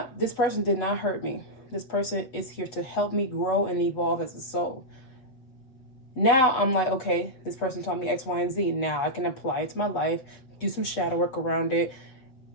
this person did not hurt me. This person is here to help me grow and evolve as a soul. Now I'm like, okay, this person taught me X, Y, and Z. Now I can apply it to my life, do some shadow work around it,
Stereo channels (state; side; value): late; right; 7.8 ms